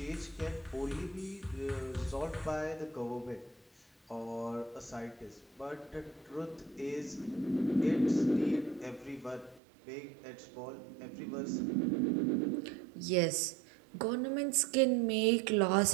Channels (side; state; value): left; drops out; at 9.6 s